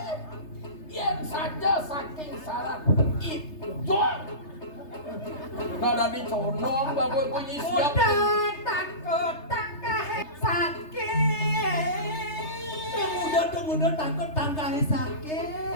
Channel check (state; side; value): late; right; 3.3 ms